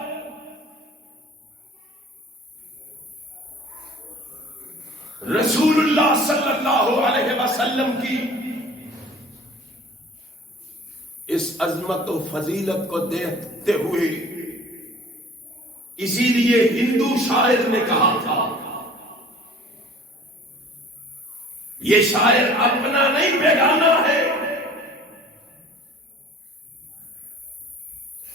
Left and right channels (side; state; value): both; normal; correlation 0.47